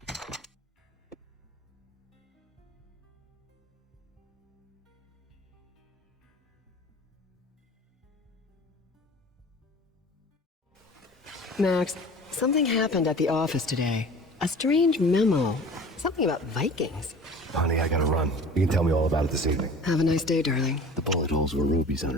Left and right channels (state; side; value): normal; both; correlation 0.42